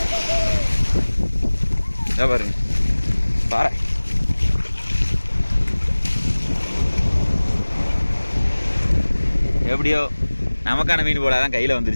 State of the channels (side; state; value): both; inverted; correlation -1.00